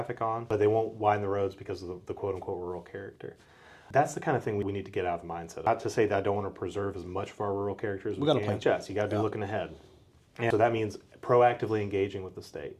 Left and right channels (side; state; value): both; identical; correlation 1.00